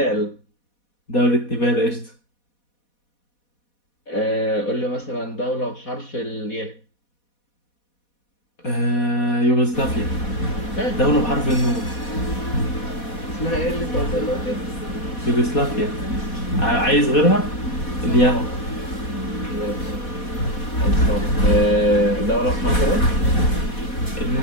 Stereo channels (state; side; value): late; right; 4.1 ms